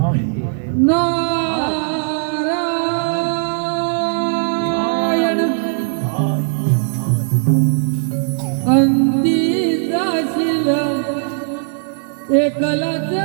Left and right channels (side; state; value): left; silent; 64 dB below the other